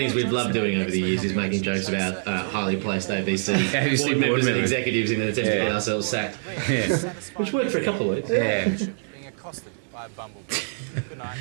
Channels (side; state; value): left; silent; 62 dB below the other